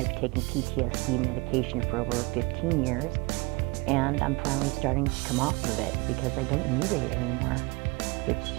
taken PTSD medication for over 15 years, and I'm finally starting to come off of it because I don't need it anymore,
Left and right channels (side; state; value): left; quieter; 26.6 dB